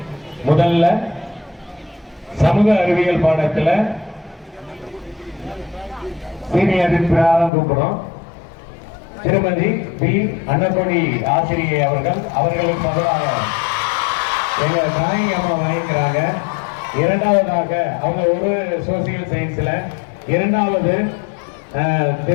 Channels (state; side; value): drops out; right; at 7.5 s